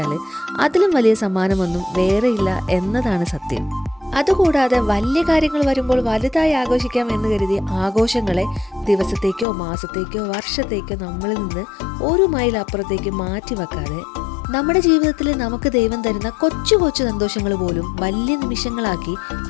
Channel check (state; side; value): drops out; right; at 9.5 s